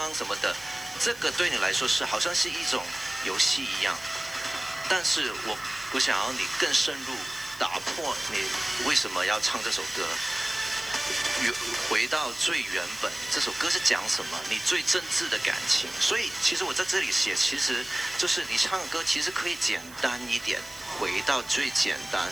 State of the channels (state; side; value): noise; right; hiss, 19 dB below the sound